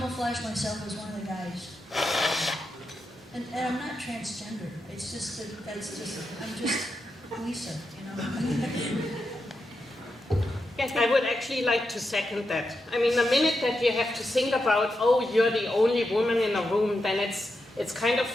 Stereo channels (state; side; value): normal; both; correlation 0.87